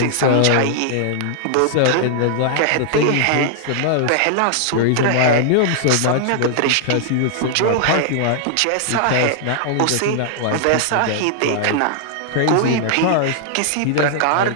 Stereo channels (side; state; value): both; different; correlation -0.01